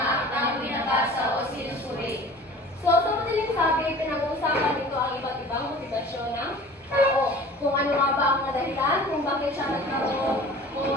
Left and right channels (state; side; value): normal; both; correlation 0.44